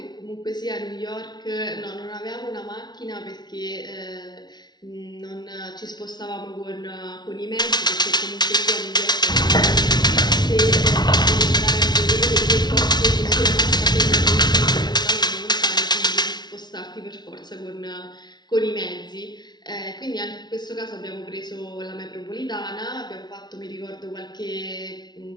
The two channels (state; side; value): late; right; 0.20 ms